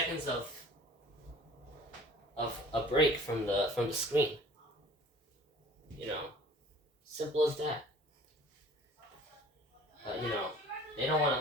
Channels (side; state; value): both; normal; correlation 0.48